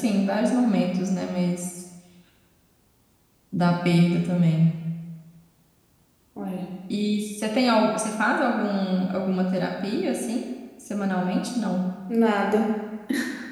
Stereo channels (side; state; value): both; identical; correlation 1.00